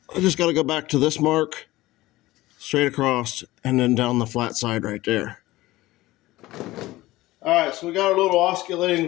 I just got to go back to this mark, straight across, and then down the flat side right there. Alright, so we got our little oscillating,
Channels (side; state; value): right; quieter; 17.9 dB